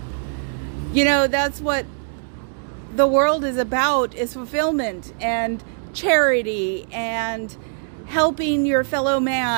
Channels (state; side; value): silent; left; digital silence